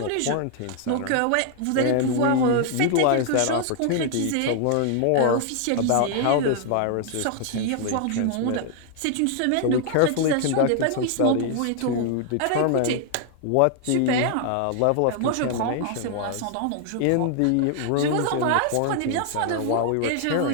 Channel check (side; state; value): both; different; correlation 0.00